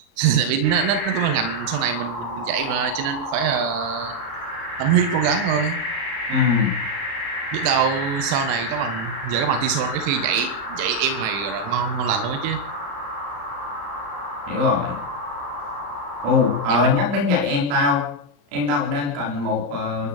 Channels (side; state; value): left; late; 36 ms